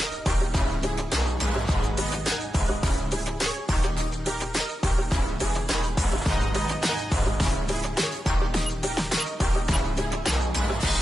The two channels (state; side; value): normal; both; correlation 0.91